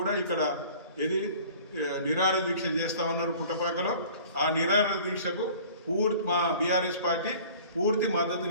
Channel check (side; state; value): both; inverted; correlation -0.47